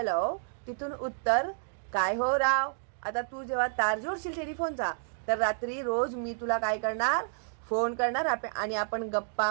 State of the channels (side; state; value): left; silent; digital silence